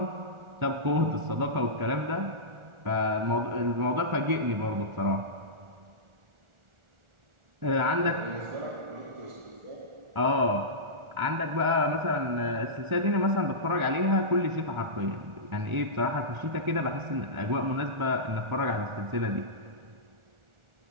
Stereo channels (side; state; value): left; late; 1.4 ms